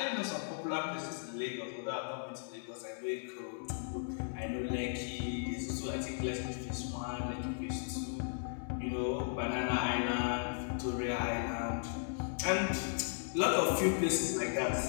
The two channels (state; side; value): silent; right; digital silence